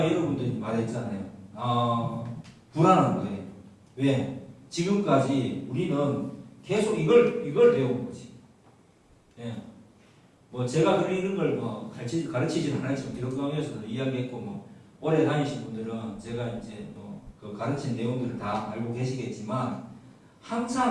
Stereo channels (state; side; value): identical; both; correlation 1.00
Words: 여러분들이 말했잖아요. 불안한 거예요. 왜? 지금까지 우리는 계속 이걸 배운 거지. 뭐 제가 그런 걸 가르치지는 않았지만 기독교에서도 이야기했고, 오래 다니신 분들은 제가 이제 그 가르친 내용들을 다 알고 계시겠지만,